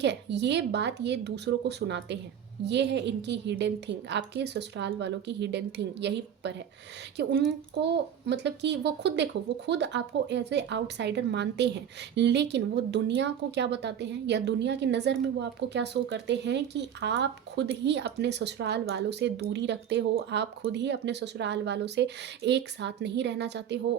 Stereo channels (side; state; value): left; quieter; 9.0 dB